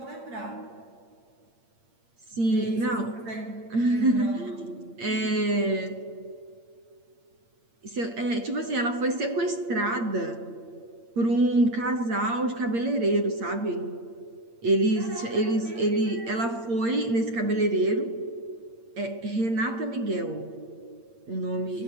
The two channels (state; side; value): late; left; 8.7 ms